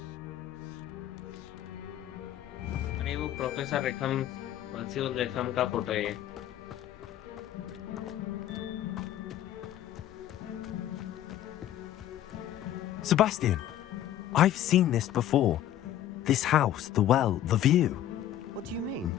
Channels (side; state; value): right; quieter; 11.9 dB